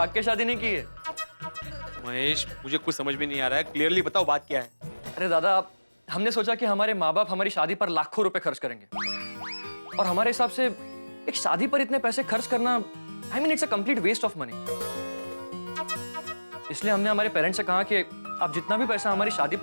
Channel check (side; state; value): both; inverted; correlation -1.00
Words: के शादी नहीं की है। महेश, मुझे कुछ समझ में नहीं आ रहा है, क्लियरली बताओ बात क्या है। अरे दादा, हमने सोचा कि हमारे माँ बाप हमारी शादी पर लाखों रुपए खर्च करेंगे, और हमारे हिसाब से एक शादी पर इतने पैसे खर्च करना, I mean it's a complete waste of money. इसलिए हमने हमारे पेरेंट्स से कहा कि आप जितना भी पैसा हमारी शादी